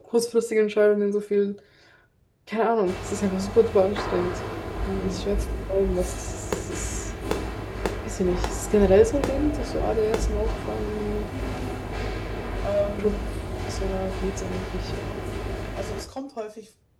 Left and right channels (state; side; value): identical; both; correlation 1.00